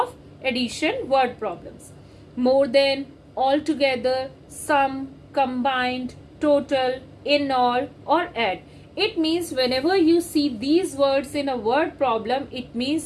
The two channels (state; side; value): identical; both; correlation 1.00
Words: addition word problems. More than, altogether, sum, combined, total, in all, or add. It means whenever you see these words in a word problem, it